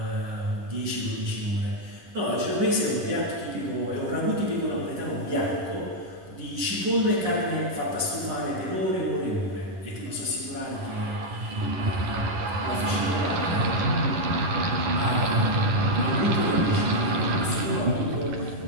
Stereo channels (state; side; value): late; left; 10 ms